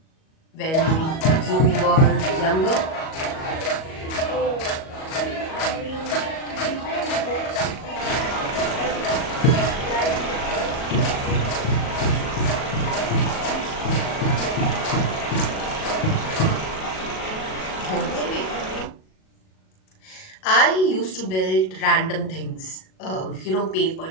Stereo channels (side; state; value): right; late; 37 ms